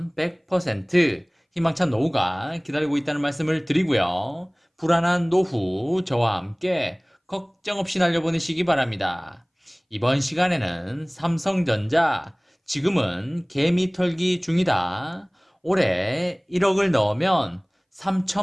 100% 희망찬 노후가 기다리고 있다는 말씀을 드리고요. 불안한 노후 저와 함께 걱정 없이 날려보내시기 바랍니다. 이번 시간에는 삼성전자 지금은 개미 털기 중이다. 올해 1억을 넣으면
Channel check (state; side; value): identical; both; correlation 1.00